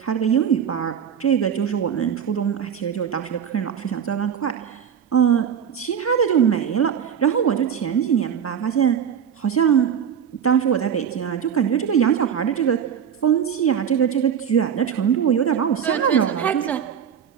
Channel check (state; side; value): quieter; left; 8.1 dB